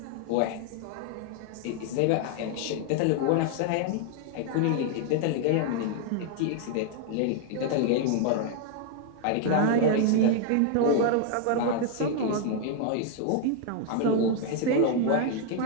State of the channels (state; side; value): different; both; correlation 0.00